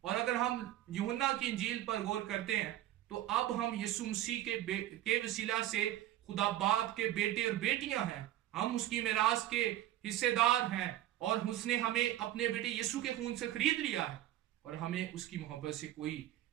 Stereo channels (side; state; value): left; quieter; 13.5 dB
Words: اور اگر ہم یوحنا کی انجیل پر غور کرتے ہیں تو اب ہم یسوع مسیح کے وسیلہ سے خدا باپ کے بیٹے اور بیٹیاں ہیں، ہم اس کی میراث کے حصے دار ہیں اور اس نے ہمیں اپنے بیٹے یسوع کے خون سے خرید لیا ہے اور ہمیں اس کی محبت سے کوئی